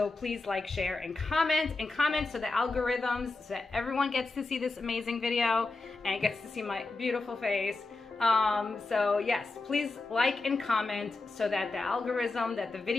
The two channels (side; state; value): right; quieter; 3.5 dB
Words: please like, share, and comment so the algorithms, so that everyone gets to see this amazing video and gets to see my beautiful face. So yes, please like and comment so that the algorithm, that the